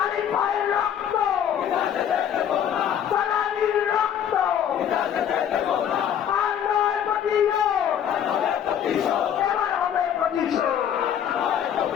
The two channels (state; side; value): quieter; right; 9.3 dB